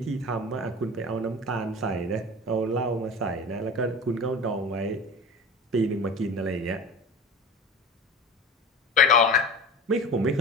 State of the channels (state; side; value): normal; both; correlation 0.34